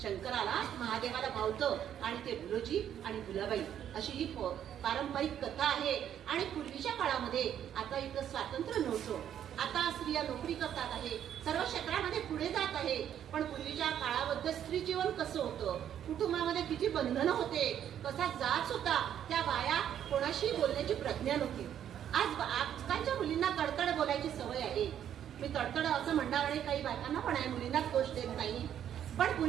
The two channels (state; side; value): quieter; left; 10.0 dB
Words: शंकराला, महादेवाला भावतं आणि ते भुलोजी आणि भुलाबाई अशी ही पारंपरिक कथा आहे. आणि पूर्वीच्या काळामध्ये, आता इथं स्वातंत्र्य नव्हतं, आता स्त्रिया नोकरी करतात आहे, सर्व क्षेत्रामध्ये पुढे जात आहे, पण पूर्वीच्या काळामध्ये स्त्री जीवन कसं होतं, कुटुंबामध्ये किती बंधनं होते, कसा जाच होता, त्या बाया कोणाशी बोलण्याची प्रज्ञा नव्हती. आजकालच्या मुलींना तडतड बोलायची सवय आहे. मी तडतड असं म्हणणार आणि काही बायकांना पण आहे, मुलींनाच दोष देत नाही, पण